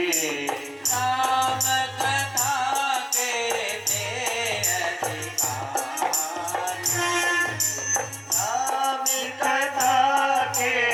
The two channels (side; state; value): both; identical; correlation 1.00